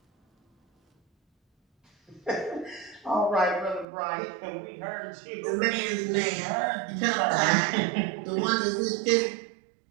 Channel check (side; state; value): left; drops out; at 3.9 s